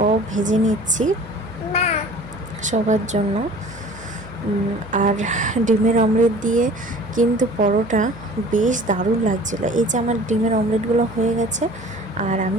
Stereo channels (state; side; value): noise; right; hum, 19 dB below the sound